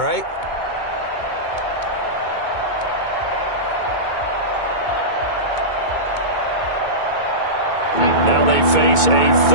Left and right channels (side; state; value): right; late; 2.2 ms